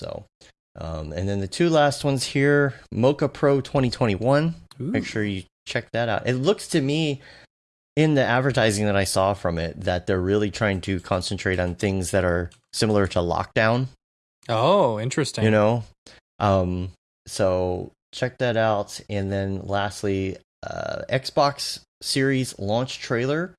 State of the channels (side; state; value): both; identical; correlation 1.00